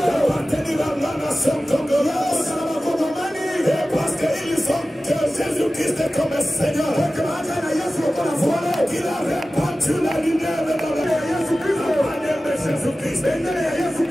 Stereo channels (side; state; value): both; normal; correlation 0.96